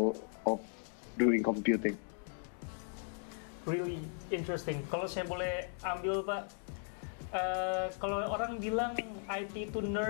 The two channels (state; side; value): silent; right; 53 dB below the other